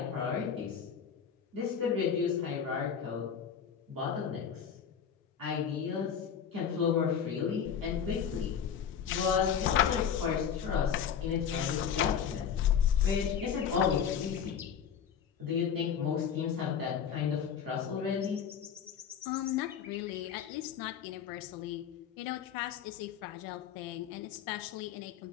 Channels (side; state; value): right; quieter; 7.8 dB